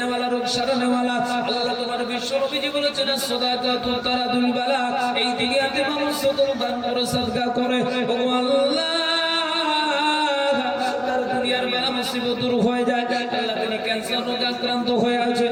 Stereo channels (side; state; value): both; identical; correlation 1.00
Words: রোগ সারানেওয়ালা। আল্লাহ তোমার বিশ্ব নবীজি বলেছেন সাদাকাতু তারাদুল বালা। এই দুনিয়াতে মানুষ সদর দান করে সাদকা করে ও আল্লাহ তার দুনিয়ার বেলা মুসিবত দূর হয়ে যায়। আল্লাহ তিনি ক্যান্সার রোগে আক্রান্ত হয়ে আছে,